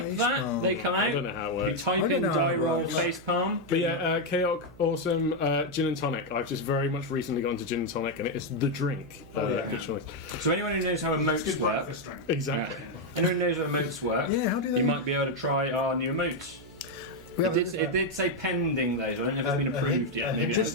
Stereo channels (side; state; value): right; noise; hum, 21 dB below the sound